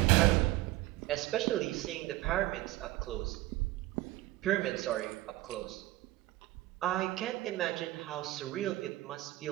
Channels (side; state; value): left; quieter; 17.4 dB